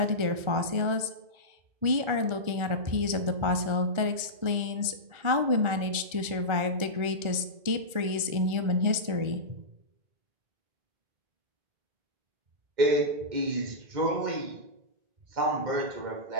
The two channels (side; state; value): left; late; 1.4 ms